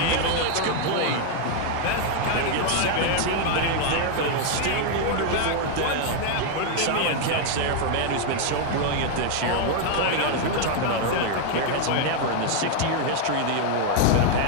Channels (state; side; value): different; both; correlation 0.00